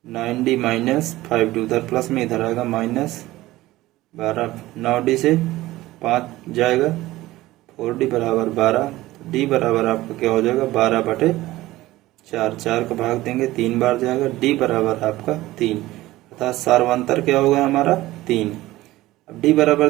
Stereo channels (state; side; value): quieter; left; 17.3 dB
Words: 9d minus 5d, उधर प्लस में इधर आएगा माइनस 12, 9d से 5 जाएगा, 4d बराबर 12, तो d बराबर आपका क्या हो जाएगा 12/4, 4 का भाग देंगे 3 बार जाएगा, d बराबर आपका 3, अर्थात सार्वंतर क्या होगा हमारा 3। अब d बराबर